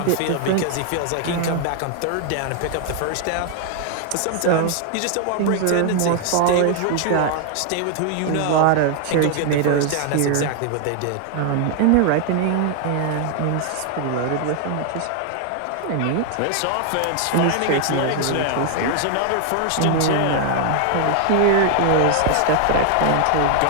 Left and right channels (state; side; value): different; both; correlation 0.00